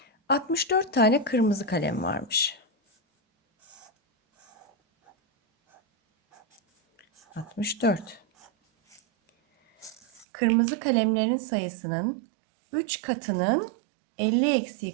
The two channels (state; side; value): drops out; left; at 10.2 s